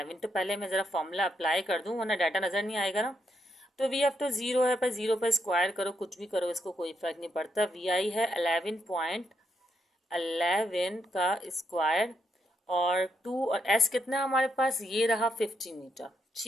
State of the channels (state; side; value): normal; both; correlation 0.79